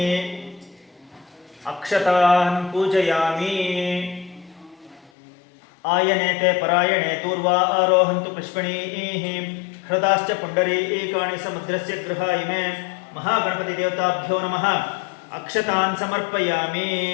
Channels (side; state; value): right; drops out; at 5.1 s